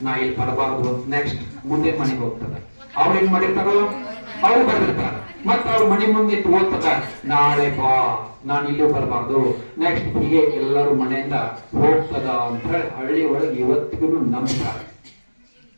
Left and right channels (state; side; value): inverted; both; correlation -1.00